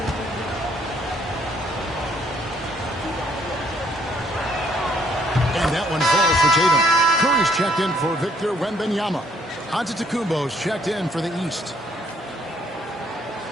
Tatum. Curry's checked in for Victor Wembanyama. Antetokounmpo's checked in for the East.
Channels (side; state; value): both; normal; correlation 0.66